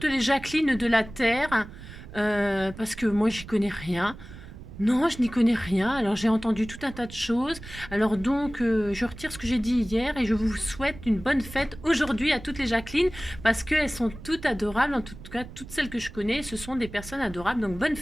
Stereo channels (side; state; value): right; noise; rumble, 15 dB below the sound